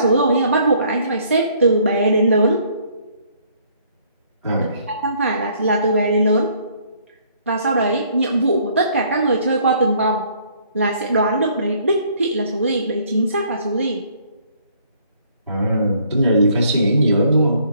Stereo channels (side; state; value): both; inverted; correlation -0.63